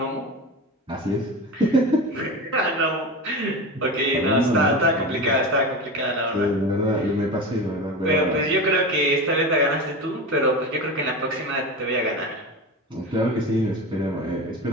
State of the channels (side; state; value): both; normal; correlation 0.26